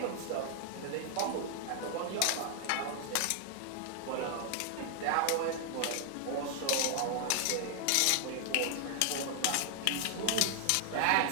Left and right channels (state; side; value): different; both; correlation 0.00